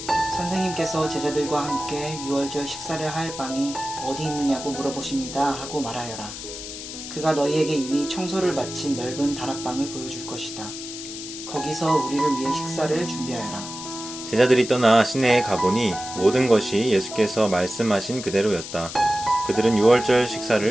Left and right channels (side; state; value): left; noise; hiss, 10 dB below the sound